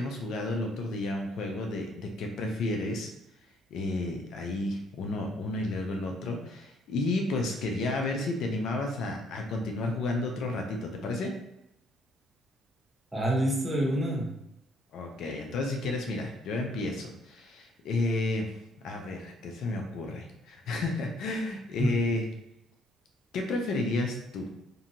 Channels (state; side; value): normal; both; correlation 0.66